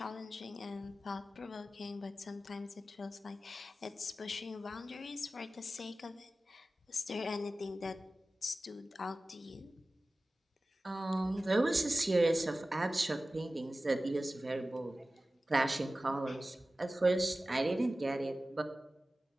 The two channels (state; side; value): normal; both; correlation 0.96